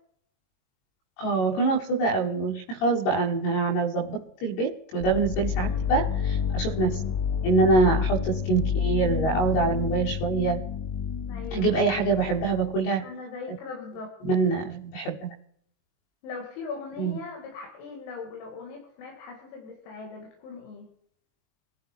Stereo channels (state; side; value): late; right; 22 ms